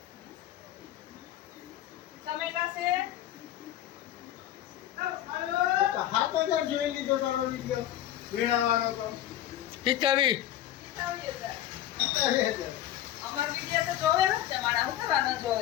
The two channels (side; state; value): right; quieter; 12.7 dB